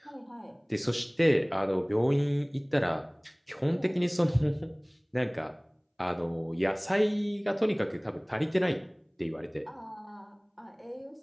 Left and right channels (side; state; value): both; identical; correlation 1.00